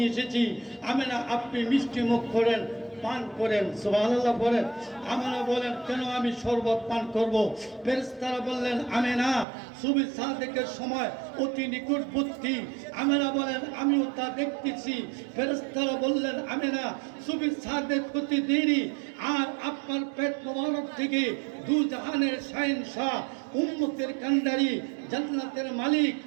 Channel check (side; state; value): left; drops out; at 9.5 s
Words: এসেছি, আমি না আপনি মিষ্টি মুখ করেন, পান করেন। সুবহানাল্লাহ বলেন। আমেনা বলেন কেন আমি শরবত পান করব? ফেরেশতারা বললেন আমেনা সুবহ সাদেকের সময় অতি নিকটবর্তী। আমেনা বলেন আমিও তা দেখতেছি। ফেরেশতারা বললেন আমেনা সুবহ সাদেক হতে দেরি, আর আপনার পেট মোবারক থেকে দু জাহানের শাহেনশাহ, উম্মতের কান্ডারি, জান্নাতের মালিক